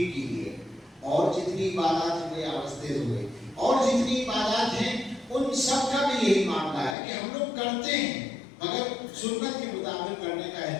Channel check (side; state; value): right; drops out; at 7.0 s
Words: کیجیے۔ اور جتنی عبادات ہوئے آواز تیز ہوئے، اور جتنی عبادات ہیں ان سب کا بھی یہی معاملہ ہے کہ ہم لوگ کرتے ہیں مگر سنت کے مطابق کرنے کا